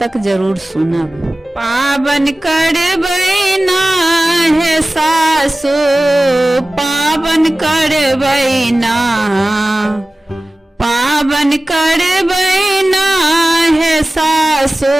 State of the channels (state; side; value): normal; both; correlation 0.97